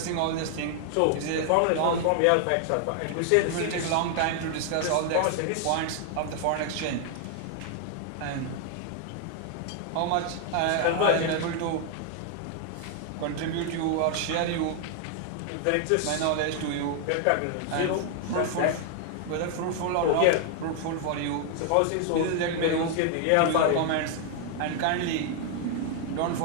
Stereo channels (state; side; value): different; both; correlation 0.00